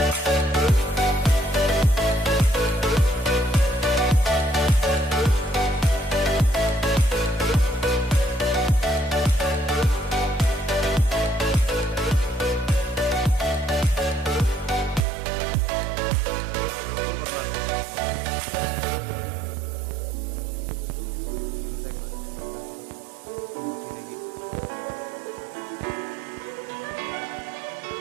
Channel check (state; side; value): drops out; left; at 15.0 s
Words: খুব আপনার শুনতে একবার পুরোটা সড়ক মূর্তি নাকি तो भाई लोग आप लोग